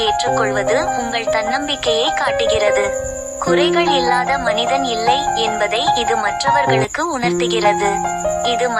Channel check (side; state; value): both; identical; correlation 1.00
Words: ஏற்றுக்கொள்வது உங்கள் தன்னம்பிக்கையை காட்டுகிறது. குறைகள் இல்லாத மனிதன் இல்லை என்பதை இது மற்றவர்களுக்கு உணர்த்துகிறது. இது